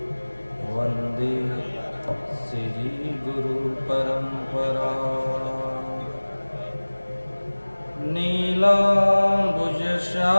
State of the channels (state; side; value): inverted; both; correlation -1.00